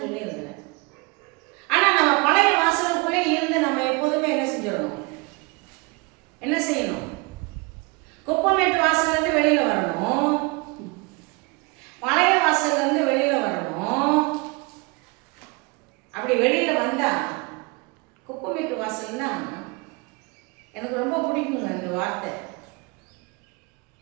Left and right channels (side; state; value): left; quieter; 27.9 dB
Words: சொல்லி இருக்கிறேன். ஆனா நம்ம பழைய வாசலுக்குள்ளே இருந்து நம்ம எப்போதுமே என்ன செஞ்சிடணும்? என்ன செய்யணும்? குப்பமேட்டு வாசல்ல இருந்து வெளியில வரணும், பழைய வாசல்ல இருந்து வெளியில வரணும். அப்படி வெளியில வந்தா குப்பமேட்டு வாசல்னா எனக்கு ரொம்ப பிடிக்குங்க அந்த வார்த்தை.